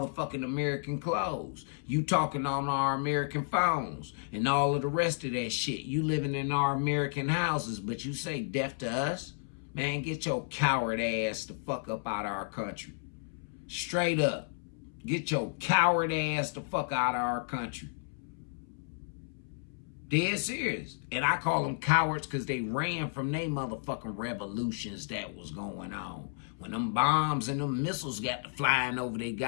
American clothes. You talking on our American phones and all of the rest of that shit. You living in our American houses, but you say death to us? Man, get your coward ass the fuck up out of our country. Straight up. Get your coward ass the fuck out of our country. Dead serious. And I call them cowards because they ran from their motherfucking revolutions that was going on. When them bombs and them missiles got to flying over their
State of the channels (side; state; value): right; silent; 56 dB below the other